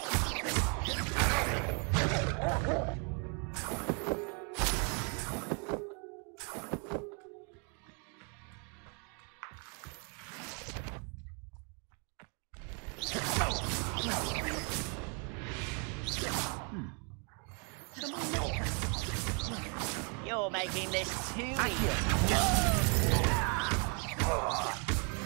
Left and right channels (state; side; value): quieter; left; 37.2 dB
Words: You're making this too